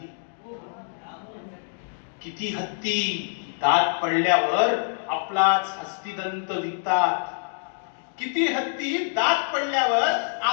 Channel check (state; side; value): silent; right; digital silence